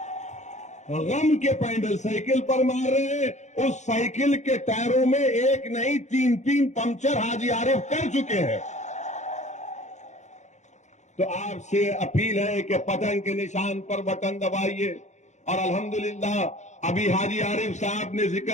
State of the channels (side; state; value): right; late; 0.34 ms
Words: غم کے پینڈل سائیکل پر مار رہے ہیں. اس سائیکل کے ٹائروں میں ایک نہیں 3 پنکچر حاجی عارف کر چکے ہیں. تو آپ سے اپیل ہے کہ پتنگ کے نشان پر بٹن دبائیے. اور الحمدللہ ابھی حاجی عارف صاحب نے